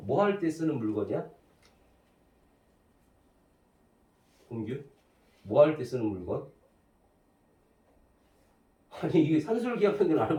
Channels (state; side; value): identical; both; correlation 1.00